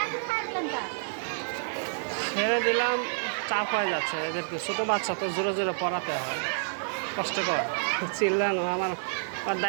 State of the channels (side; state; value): left; silent; 59 dB below the other